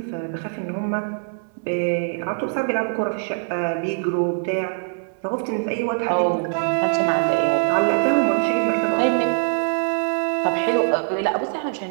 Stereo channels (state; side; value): silent; left; 64 dB below the other